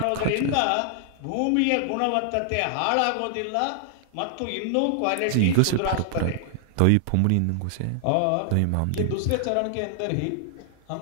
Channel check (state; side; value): different; both; correlation 0.00